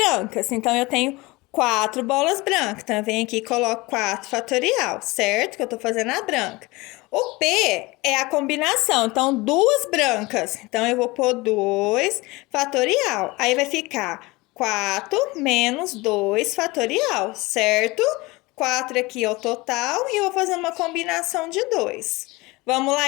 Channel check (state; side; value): quieter; right; 22.7 dB